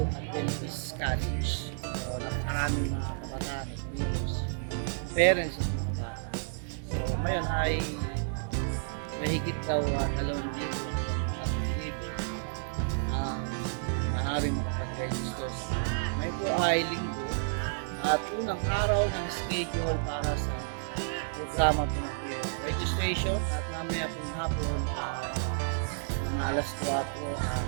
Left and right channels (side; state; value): left; silent; 57 dB below the other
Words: Adventist College. So, napakaraming mga kabataan at leaders, parents at mga bata. So, ngayon ay mahigit daw 2,000 at libo ang maaaring makapag-register sa may po ay linggo at unang araw ng schedule para sa programa po ng registration at mamaya pong hapon mga alas 4